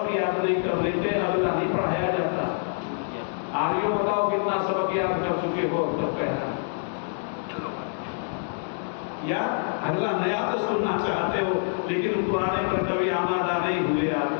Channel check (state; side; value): silent; right; digital silence